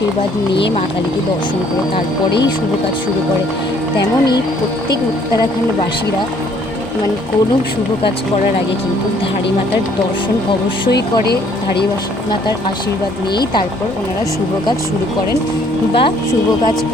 নিয়ে মা কালীকে দর্শন করে তারপরেই শুভ কাজ শুরু করে, তেমনই প্রত্যেক উত্তরাখণ্ডবাসীরা কোনো শুভ কাজ করার আগে কিন্তু ধারীমাতার দর্শন অবশ্যই করে। ধারীমাতার আশীর্বাদ নিয়েই তারপর ওনারা শুভ কাজ শুরু করেন বা শুভ কাজ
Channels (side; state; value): both; normal; correlation 0.62